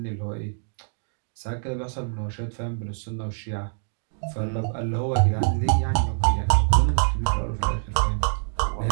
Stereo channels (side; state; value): left; silent; digital silence